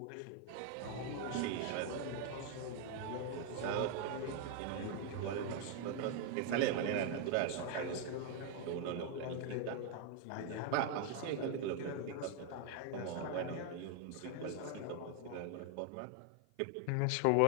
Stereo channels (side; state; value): both; different; correlation 0.00